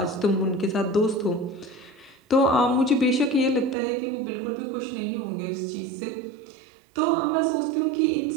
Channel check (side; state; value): left; drops out; at 3.8 s